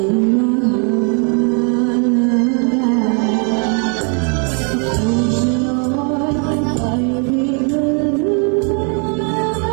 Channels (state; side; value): quieter; left; 39.8 dB